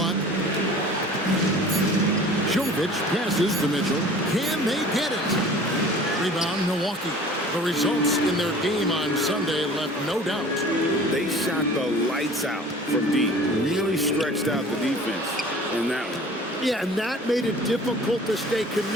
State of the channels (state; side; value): normal; both; correlation 0.45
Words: Jovic passes to Mitchell. Can they get it? Rebound, Milwaukee. The results in their game on Sunday left no doubt. They shot the lights out from deep. Really stretched out the defense in that one. Yeah, and that made it difficult to stay